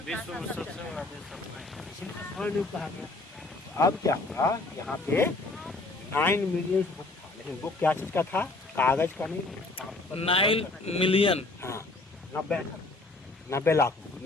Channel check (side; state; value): right; quieter; 3.2 dB